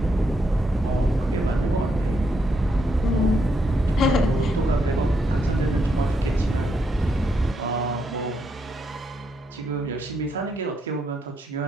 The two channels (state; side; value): normal; both; correlation 0.78